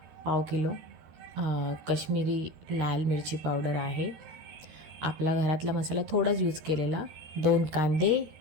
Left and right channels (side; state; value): left; late; 13 ms